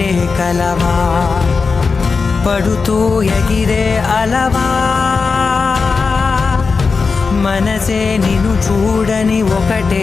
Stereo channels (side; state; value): right; quieter; 4.7 dB